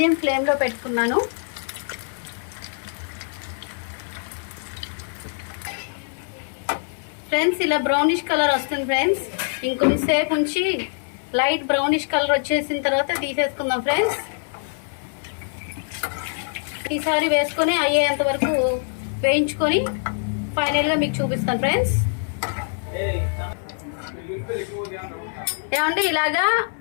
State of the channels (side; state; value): right; silent; 59 dB below the other